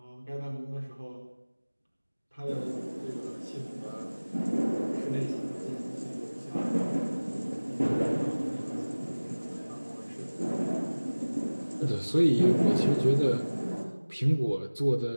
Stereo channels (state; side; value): inverted; both; correlation -1.00